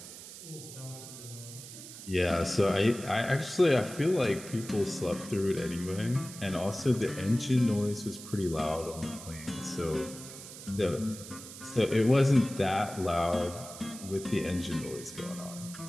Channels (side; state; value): right; noise; hiss, 13 dB below the sound